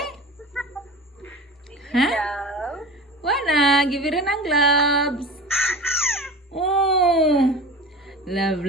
Ha? Wana, give it ang gloves. Oh. Love,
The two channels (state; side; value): normal; both; correlation 0.34